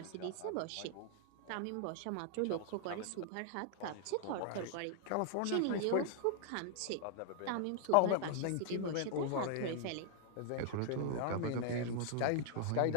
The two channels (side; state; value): both; different; correlation -0.01